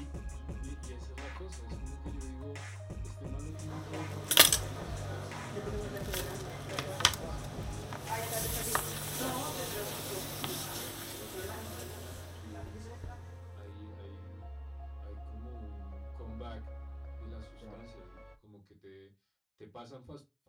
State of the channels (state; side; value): identical; both; correlation 1.00